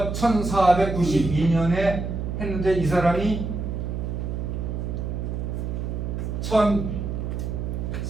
1492년에 했는데 이 사람이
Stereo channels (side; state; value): right; noise; hum, 3 dB below the sound